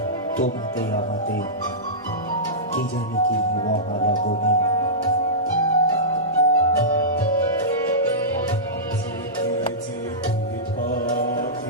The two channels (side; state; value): both; normal; correlation -0.17